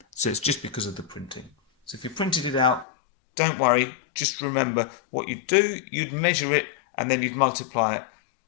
So it's just because of the printing. So if you printed it out, don't worry, just remember what you'd do, you'd measure it and then you'd multiply it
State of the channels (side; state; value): right; drops out; at 2.9 s